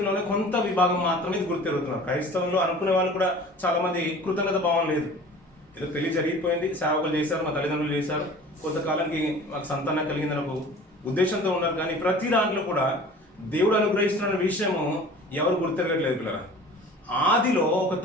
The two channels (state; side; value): normal; both; correlation 0.43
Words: కొంత విభాగం మాత్రమే ఇది గుర్తెరుగుతున్నారు. క్రైస్తవంలో అనుకునే వాళ్ళు కూడా చాలా మంది కృతజ్ఞత భావం లేదు. ఏదో పెళ్లి జరిగిపోయింది, సేవకులు చేశారు, మా తల్లిదండ్రులు చేశారు, కొంతకాలానికి మాకు సంతానం కలిగిందని ఒక ఉద్దేశంతో ఉన్నారు. కానీ ప్రతి దాంట్లో కూడా దేవుడు అనుగ్రహిస్తున్న విషయము ఎవరు గుర్తెరగట్లేదు పిల్లరా. ఆదిలో ఒక